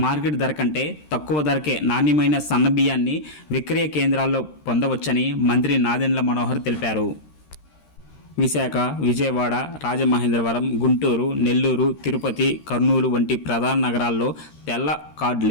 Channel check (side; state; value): right; late; 13 ms